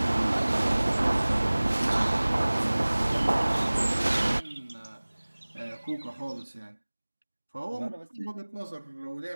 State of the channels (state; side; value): inverted; both; correlation -1.00